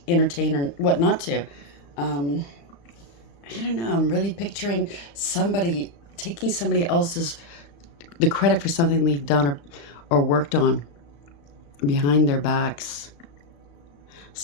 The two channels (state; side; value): late; right; 35 ms